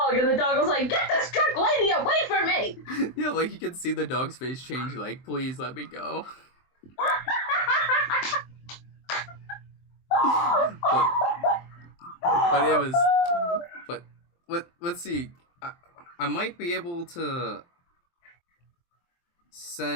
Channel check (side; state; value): right; late; 23 ms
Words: and the dog was like, "Get this drunk lady away from me!" Yeah, like you can see the dog's face change, like, "Please let me go." but it was. But let's see. I might be able to